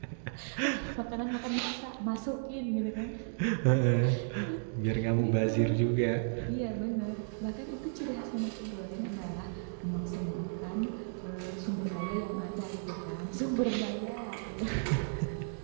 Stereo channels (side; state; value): left; silent; digital silence